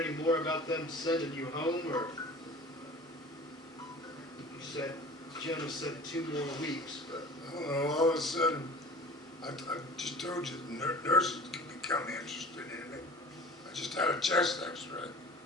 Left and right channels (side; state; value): both; normal; correlation 0.42